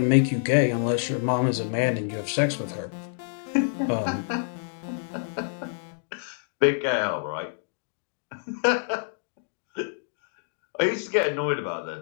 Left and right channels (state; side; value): silent; right; digital silence